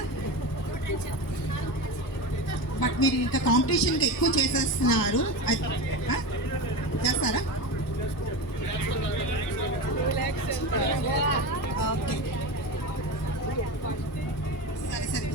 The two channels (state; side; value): normal; both; correlation 0.24